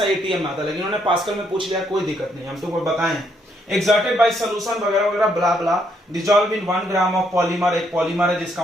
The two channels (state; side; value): normal; both; correlation 0.73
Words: एटीएम में आता है, लेकिन उन्होंने पास्कल में पूछ लिया, कोई दिक्कत नहीं, हम तुमको बताएं। एक्सर्टेड बाय सॉल्यूशन वगैरह वगैरह blah blah, dissolve in 1 gram of polymer. एक पॉलीमर है जिसका